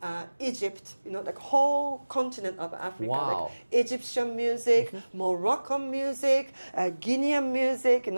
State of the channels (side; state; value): both; inverted; correlation -1.00